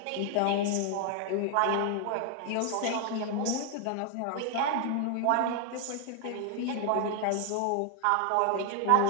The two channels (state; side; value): different; both; correlation 0.00